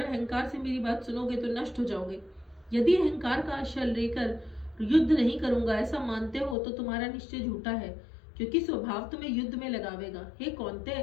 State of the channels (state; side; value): drops out; right; at 6.6 s